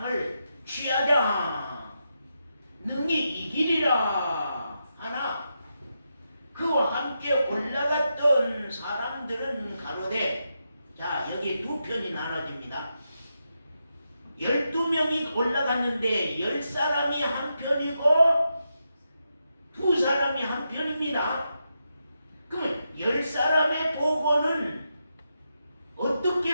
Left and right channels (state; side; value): inverted; both; correlation -0.85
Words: 취하자 능히 이기리라 하나 그와 함께 올라갔던 사람들은 가로되, 자 여기 두 편이 나눠집니다. 12명이 올라갔는데 10사람이 한 편이고 2사람이 한 편입니다. 그러면 10사람의 보고는